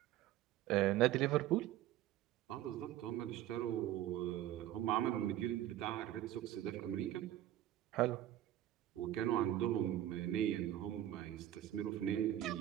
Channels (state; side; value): quieter; left; 13.0 dB